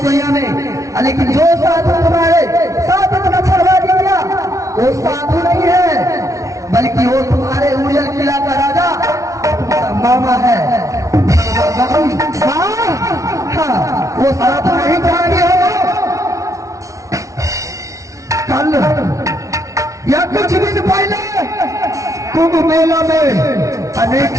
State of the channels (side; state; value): left; late; 0.15 ms